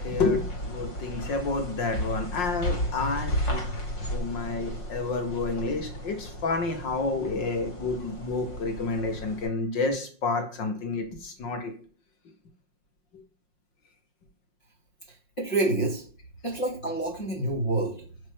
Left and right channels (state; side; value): late; right; 5.6 ms